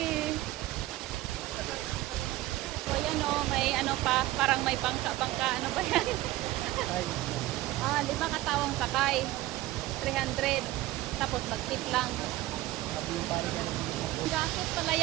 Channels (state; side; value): quieter; left; 16.7 dB